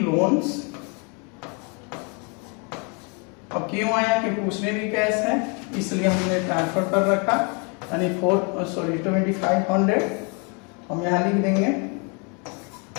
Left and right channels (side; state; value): right; quieter; 34.5 dB